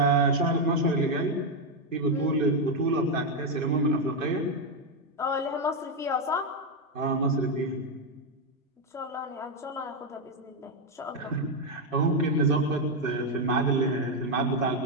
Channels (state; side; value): normal; both; correlation 0.04